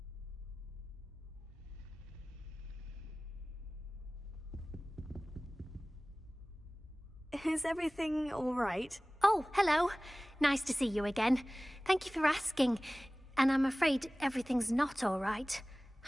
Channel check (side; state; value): both; normal; correlation 0.98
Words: Is everything all right? Oh, hello. Nice to see you again. Thank you for asking. And I'm afraid everything's not all right.